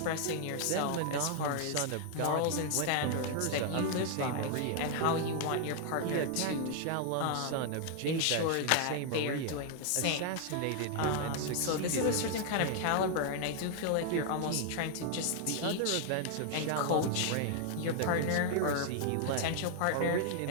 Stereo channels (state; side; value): different; both; correlation 0.00